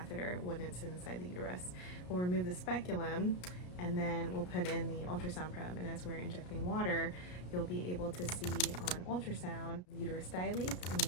when it's inside the uterus. We'll remove the speculum and then we'll put in the ultrasound probe, and as we're injecting water, you'll be able to see on ultrasound the uterus dilates, and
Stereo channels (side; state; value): right; late; 33 ms